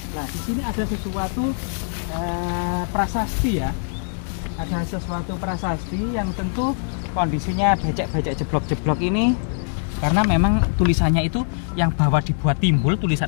Nah, di sini ada sesuatu prasasti ya. Ada sesuatu prasasti yang tentu kondisinya becek-becek jeblok-jeblok ini. Karena memang tulisannya itu yang bawah dibuat timbul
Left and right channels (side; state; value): right; silent; digital silence